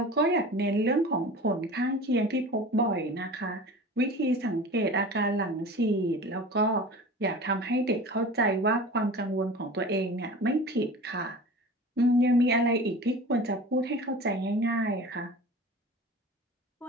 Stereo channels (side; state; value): both; normal; correlation 0.37